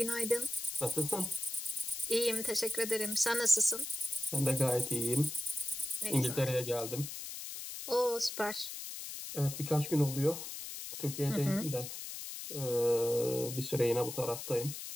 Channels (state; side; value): noise; left; hiss, 8 dB below the sound